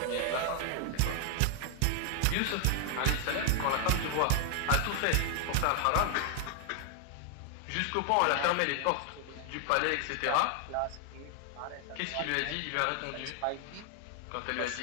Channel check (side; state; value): both; different; correlation 0.00